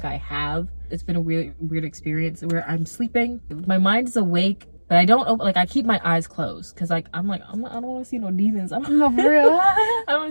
I have, it's been a really weird experience where I'm sleeping, my mind is awake, but I don't open, like I keep my eyes closed because like I don't want to see no demons. No, for real. I don't want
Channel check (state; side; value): inverted; both; correlation -1.00